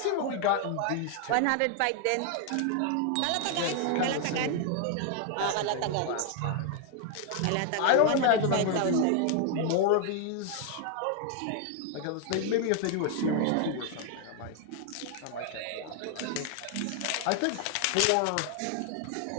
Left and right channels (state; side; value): different; both; correlation 0.00